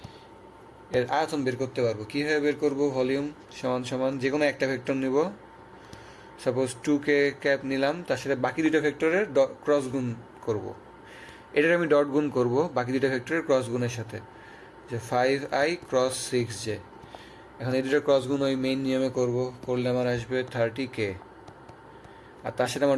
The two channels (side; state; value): both; identical; correlation 1.00